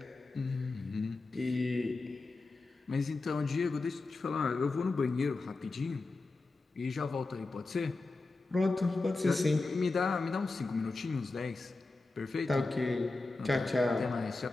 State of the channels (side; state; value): right; quieter; 3.5 dB